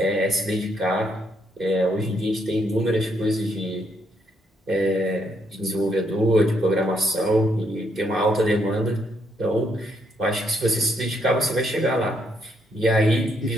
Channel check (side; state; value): both; normal; correlation 0.74